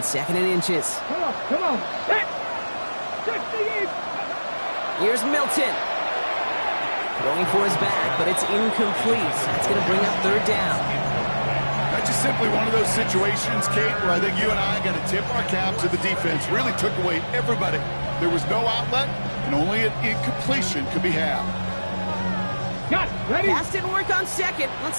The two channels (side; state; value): both; inverted; correlation -1.00